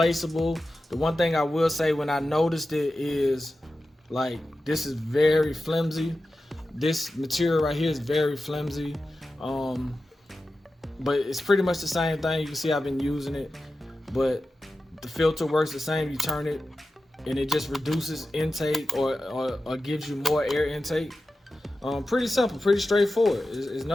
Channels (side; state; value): both; normal; correlation 0.93